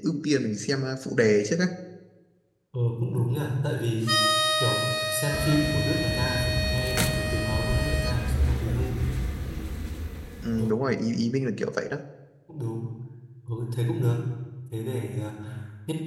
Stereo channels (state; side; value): identical; both; correlation 1.00